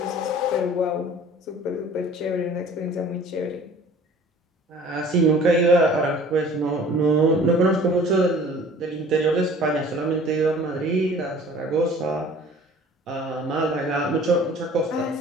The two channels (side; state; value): both; normal; correlation 0.48